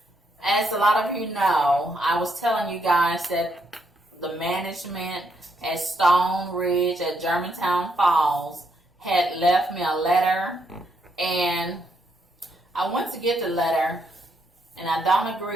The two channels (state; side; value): normal; both; correlation 0.76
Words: as a lot of you know, I was telling you guys that the management at Stoneridge at Germantown Falls had left me a letter, and I went to get the letter, and I don't